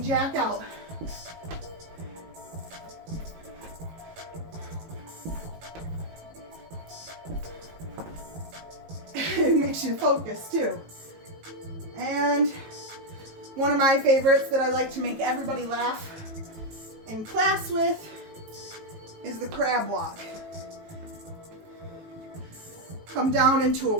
out. It makes you focus too. And one of my favorites that I like to make everybody laugh in class with is the crab walk. Come down into a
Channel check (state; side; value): late; left; 18 ms